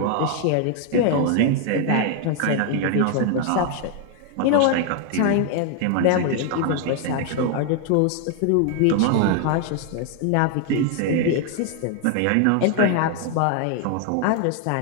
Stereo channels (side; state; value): both; different; correlation 0.00